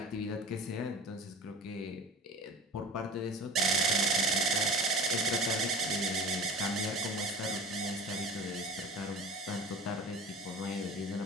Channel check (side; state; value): both; normal; correlation 0.39